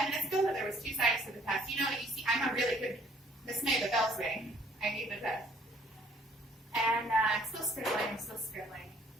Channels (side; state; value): both; normal; correlation 0.60